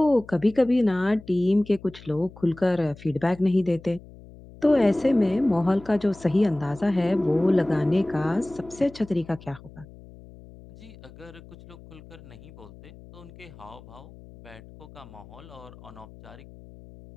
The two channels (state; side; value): noise; left; hum, 20 dB below the sound